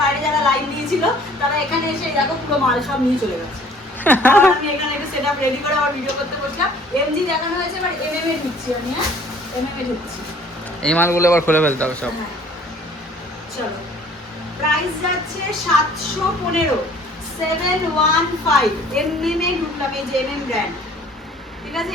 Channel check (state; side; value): normal; both; correlation 0.54